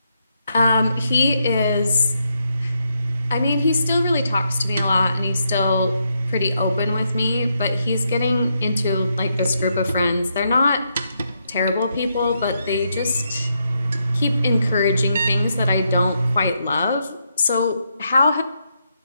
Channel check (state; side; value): inverted; both; correlation -0.80